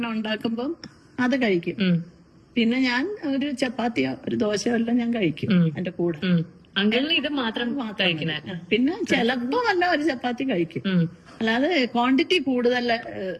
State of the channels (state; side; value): identical; both; correlation 1.00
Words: ഉണ്ടാക്കുമ്പം അത് കഴിക്കും. പിന്നെ ഞാൻ ഒരു ചപ്പാത്തിയോ ഒരു ദോശയോ എല്ലാം ഞാൻ കഴിക്കും എന്റെ കൂടെ. അങ്കിളിന് ഇത് മാത്രം കഴിക്കണേ. പിന്നെ ചിലപ്പോ വല്ല ഒരു ചപ്പാത്തി കഴിക്കും. അല്ലാതെ ക്വാണ്ടിറ്റി കൂടുതൽ